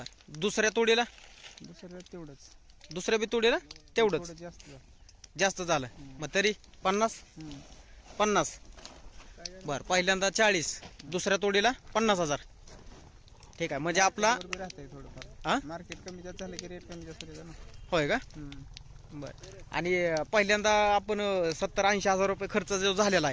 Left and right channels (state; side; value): identical; both; correlation 1.00